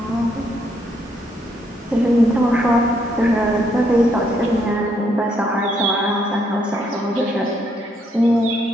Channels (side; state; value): both; normal; correlation 0.73